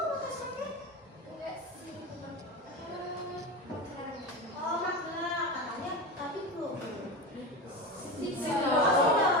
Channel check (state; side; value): normal; both; correlation 0.24